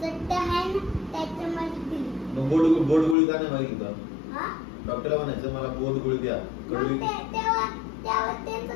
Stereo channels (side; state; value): right; drops out; at 3.2 s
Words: मग बोट गोळी का नाही मागितलं? डॉक्टरला म्हणायचं मला बोट गोळी द्या, कडवी.